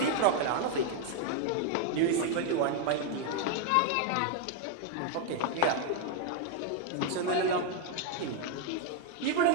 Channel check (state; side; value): different; both; correlation 0.00